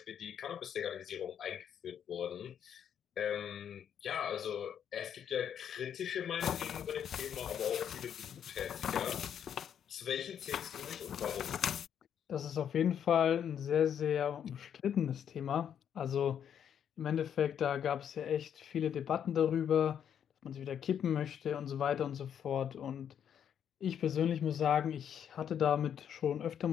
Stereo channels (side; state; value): right; quieter; 8.8 dB